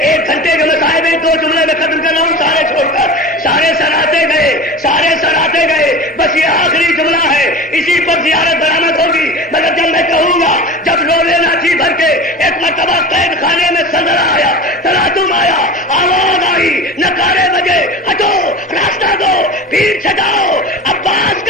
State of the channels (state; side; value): normal; both; correlation 0.32